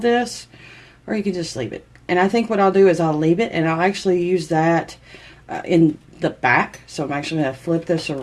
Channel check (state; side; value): identical; both; correlation 1.00